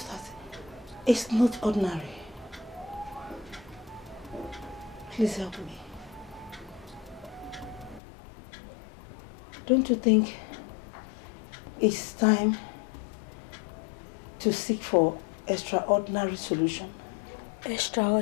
that it's not ordinary. Please help me. Don't you think it's time to seek for extraordinary solution?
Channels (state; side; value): drops out; right; at 8.0 s